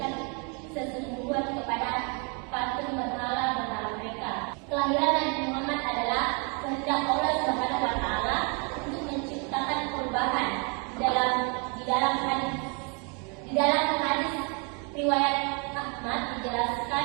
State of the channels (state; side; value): quieter; left; 35.0 dB